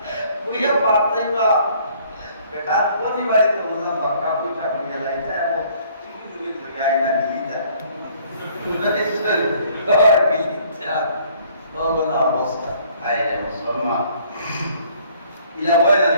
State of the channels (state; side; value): inverted; both; correlation -0.60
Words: কইয়া বাড়তাইবা বেটা কোনি বাড়িতে মজা বাক্কা কুঠা করিয়া লাইতা এবং চিকি মুগি লইয়া আইনা দিলিতা অবস্থা মুসলমান ইলা বয়লা